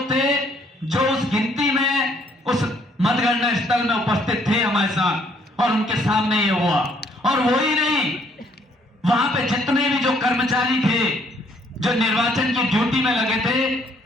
थे जो उस गिनती में, उस मतगणना स्थल में उपस्थित थे हमारे साथ, और उनके सामने ये हुआ। और वो ही नहीं, वहां पे जितने भी जो कर्मचारी थे जो निर्वाचन की ड्यूटी में लगे थे,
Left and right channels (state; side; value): normal; both; correlation 0.65